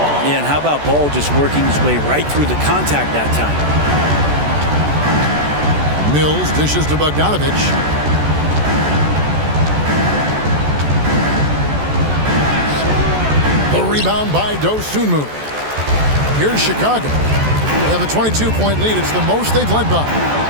Yeah, and how about Ball just working his way right through the contact that time? Mills dishes to Bogdanovic. The rebound by Dosunmu. Here's Chicago. They have a 22-point lead. It's the most they've led by.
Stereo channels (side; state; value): left; late; 14 ms